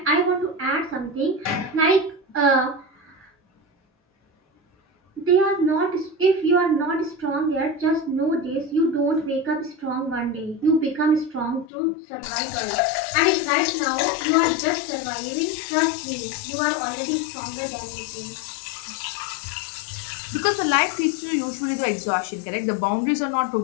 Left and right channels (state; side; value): drops out; right; at 11.7 s